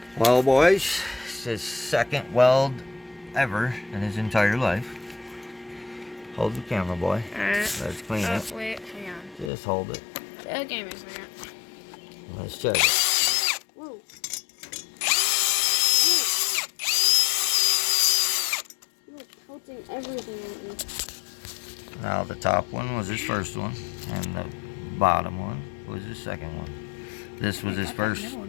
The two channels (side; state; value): right; drops out; at 9.5 s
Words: Well, boys, it's his second weld ever in his entire life. Hold the camera, boy. Let's clean it. Wait, hang on. Just hold it. Okay, give me a second. Let's check it. Whoa. You're coating everything on me. Now, the top one was his first one, and the bottom one was his second one. This was his first